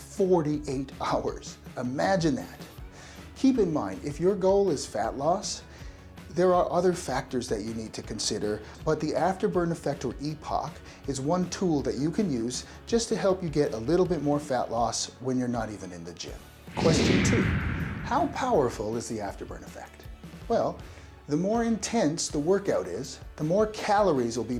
hours. Imagine that. Keep in mind, if your goal is fat loss, there are other factors that you need to consider, but the afterburn effect, or E.P.O.C, is one tool that you can use just to help you get a little bit more fat loss when you're not even in the gym. Question 2. How powerful is the afterburn effect? Well, the more intense the workout is, the more calories will be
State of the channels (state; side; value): identical; both; correlation 1.00